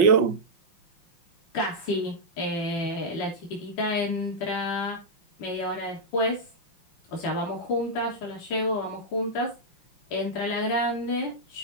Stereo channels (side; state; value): right; late; 5.7 ms